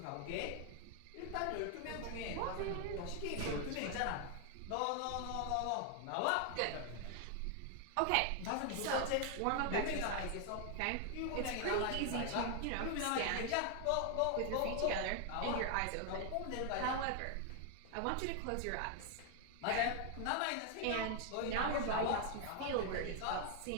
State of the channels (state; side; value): different; both; correlation 0.00